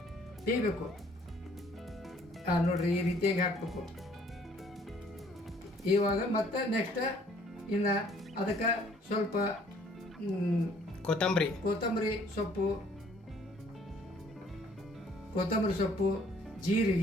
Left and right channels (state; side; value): normal; both; correlation 0.60